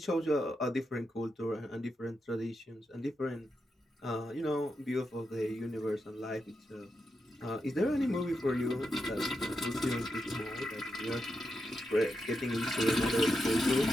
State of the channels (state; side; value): normal; both; correlation 0.86